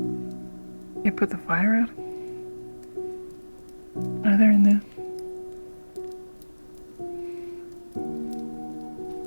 You put the fire out? Are they in there?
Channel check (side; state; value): both; inverted; correlation -1.00